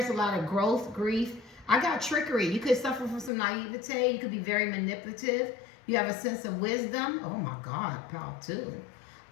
a lot of growth, grief. I got trickery. You could suffer from some naivete. You could be very manipulative. You have a sense of wisdom. Oh my God, pal too.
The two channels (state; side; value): drops out; right; at 3.3 s